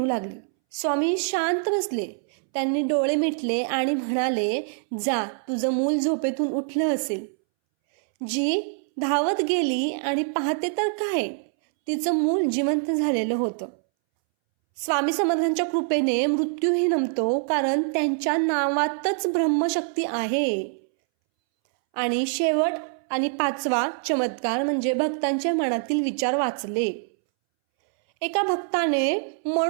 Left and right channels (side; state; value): left; silent; 62 dB below the other